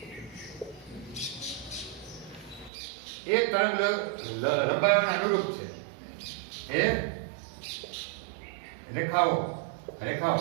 एक तरंग लंबाई अनुरूप है. ए रेखाओं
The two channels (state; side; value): drops out; left; at 2.7 s